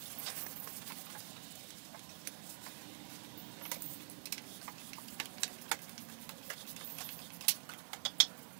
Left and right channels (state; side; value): silent; left; digital silence